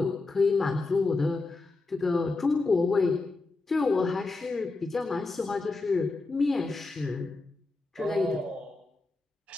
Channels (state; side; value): quieter; right; 3.5 dB